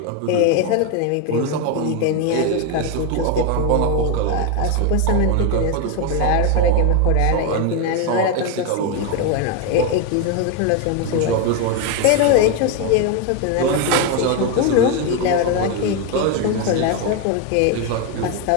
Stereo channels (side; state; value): both; different; correlation 0.02